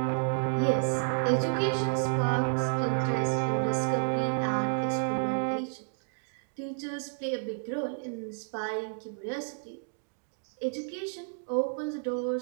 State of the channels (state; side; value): silent; left; digital silence